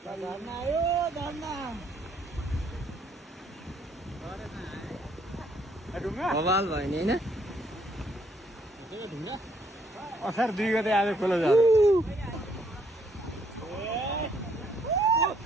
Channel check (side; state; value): both; normal; correlation 0.68